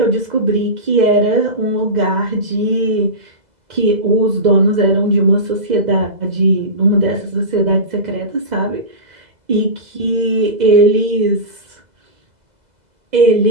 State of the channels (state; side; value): late; left; 2.0 ms